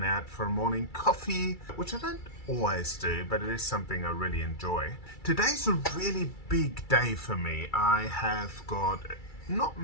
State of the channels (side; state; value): right; late; 2.3 ms